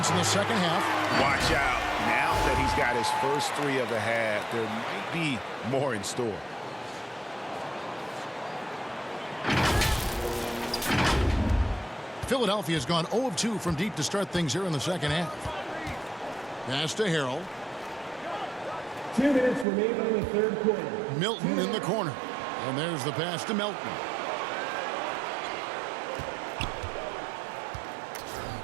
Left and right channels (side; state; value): left; drops out; at 19.7 s